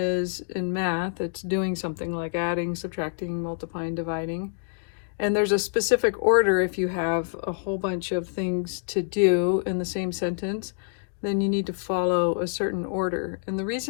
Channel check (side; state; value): right; silent; digital silence